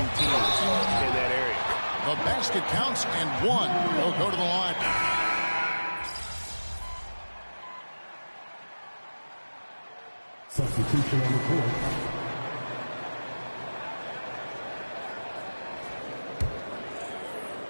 teams in that area. The basket counts, and 1 will go to the line. Substitution on the court.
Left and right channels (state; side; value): inverted; both; correlation -1.00